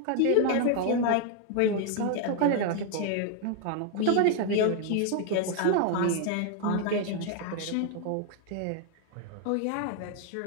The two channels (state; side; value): different; both; correlation 0.01